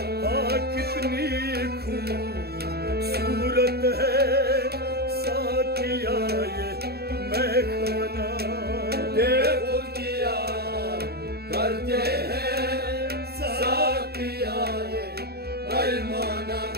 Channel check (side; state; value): left; late; 0.46 ms